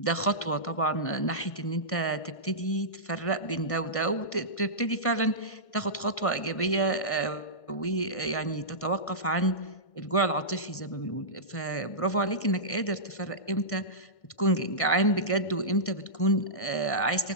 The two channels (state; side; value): late; right; 1.6 ms